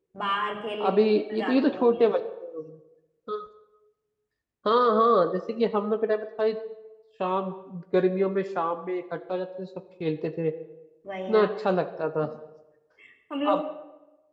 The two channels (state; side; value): identical; both; correlation 1.00